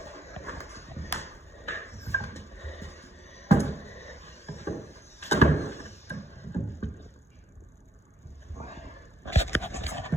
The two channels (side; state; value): both; normal; correlation 0.69